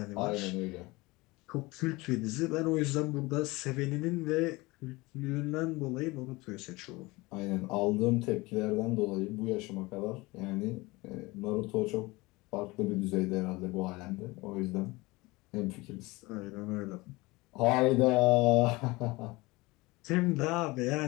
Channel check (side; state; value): right; quieter; 22.5 dB